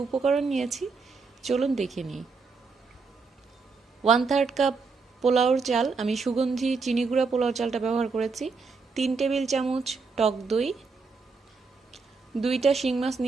উপকরণ নিয়েছি চলুন দেখে নিই। 1/3 কাপ পোলাওর চাল, আমি সুগন্ধি চিনি গুঁড়া পোলাও চালটা ব্যবহার করেছি। 3 টেবিল চামচ টক দই, 2টা শিং মাছ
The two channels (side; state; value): left; quieter; 4.6 dB